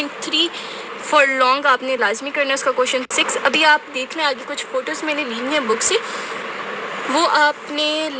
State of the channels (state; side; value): identical; both; correlation 1.00